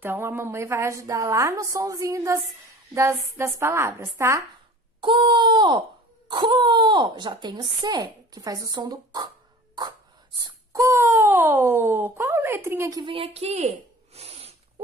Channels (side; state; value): both; normal; correlation 0.43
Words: a mamãe vai ajudar lá no sonzinho das palavras, tá? Co. Já tem o C, que faz o som do co. Qual letrinha que vem aqui?